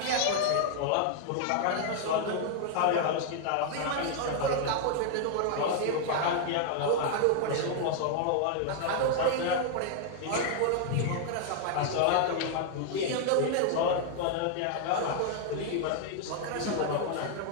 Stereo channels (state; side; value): different; both; correlation 0.00